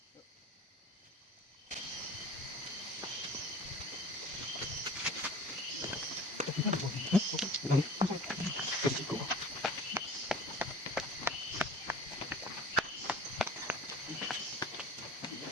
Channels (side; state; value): both; normal; correlation 0.42